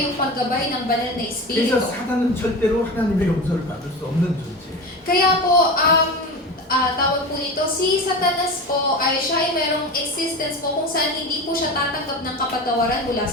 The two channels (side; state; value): both; normal; correlation 0.27